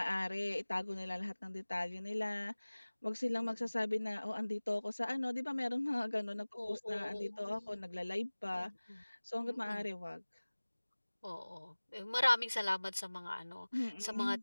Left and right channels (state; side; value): inverted; both; correlation -1.00